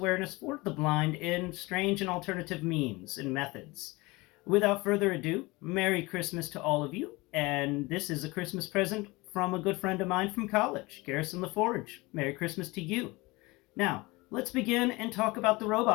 for the blind in strange and alternative means and methods. Without further ado, Merry Christmas to all of you, and this is a Christmas present from a good friend of mine from college, Garrison LaForge. Merry Christmas to you. Now, let's begin and talk about the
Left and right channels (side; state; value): right; quieter; 23.0 dB